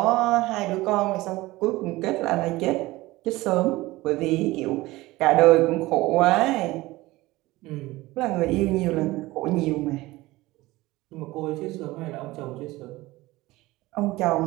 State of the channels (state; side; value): quieter; left; 19.3 dB